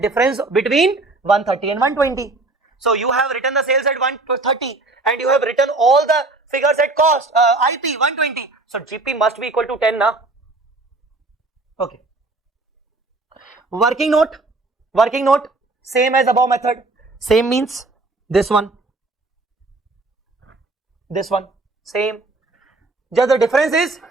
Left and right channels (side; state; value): left; quieter; 3.2 dB